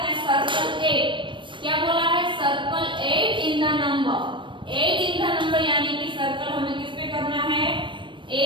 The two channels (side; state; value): left; late; 0.24 ms